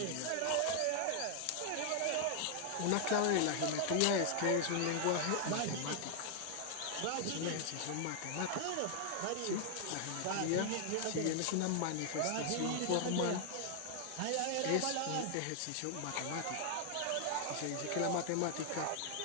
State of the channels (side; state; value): both; different; correlation 0.00